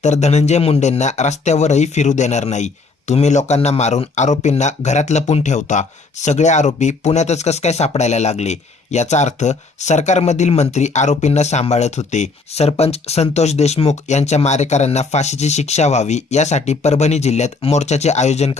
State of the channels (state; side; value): quieter; right; 4.0 dB